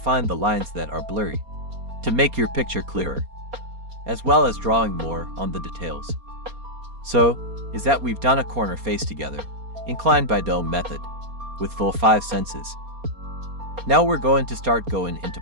the lines that are blurry to make your picture clearer, as well as drawing more on the details. So, is that we've done a corner face together, inclined by LoomisMethod, with full 5 senses. Now we're going to start going into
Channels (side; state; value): left; late; 4.3 ms